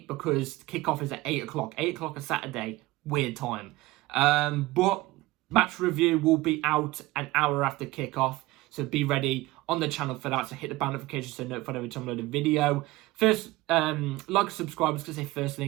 because kickoff is at 8 o'clock. 8 o'clock on Saturday. Weird time. But match review will be out an hour after kickoff, so be ready on the channel for that. So hit the bell notification so notified every time I upload a video. First, like and subscribe. I was going to say first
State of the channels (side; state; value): left; quieter; 19.5 dB